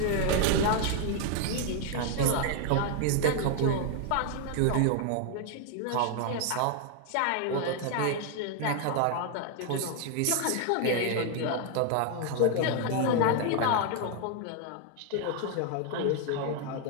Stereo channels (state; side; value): different; both; correlation 0.00